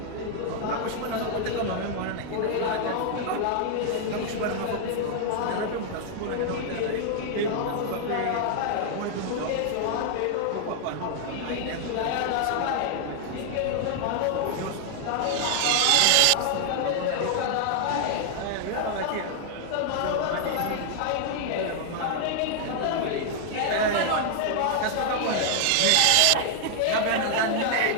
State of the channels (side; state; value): both; different; correlation 0.00